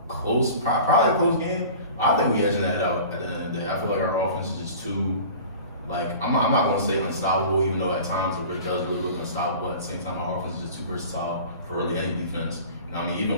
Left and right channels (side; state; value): both; inverted; correlation -0.41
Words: close, probably a close game. I think we edging that out at the end of the day. I feel like our offense is just too, like, I'm not gonna say unstoppable, even though at times it really does really look unstoppable. At the same time, our offense is just too versatile for really any defense. You know what I mean?